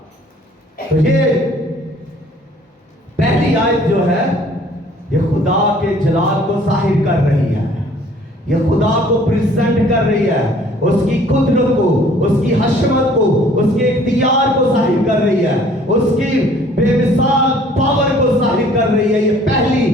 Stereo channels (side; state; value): both; normal; correlation 0.55